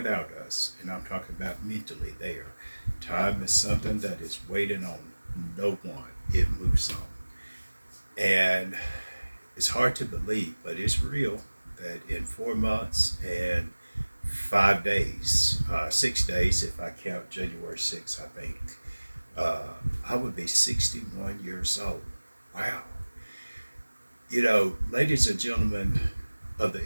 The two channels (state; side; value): inverted; both; correlation -1.00